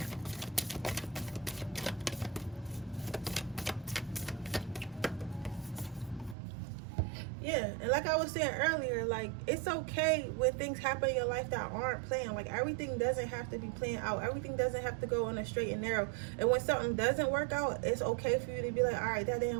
yeah, and like I was saying earlier, like, it's okay when things happen in your life that aren't planned. Like, everything doesn't have to be planned out. Everything doesn't have to go on a straight and narrow. And when something doesn't work out, it's okay for you to be like, all right, that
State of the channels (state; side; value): drops out; left; at 6.4 s